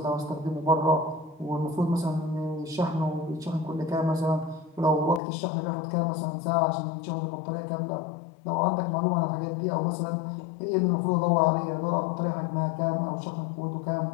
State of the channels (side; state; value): right; drops out; at 5.2 s